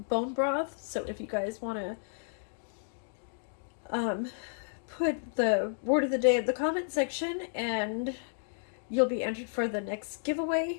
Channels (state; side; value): silent; right; digital silence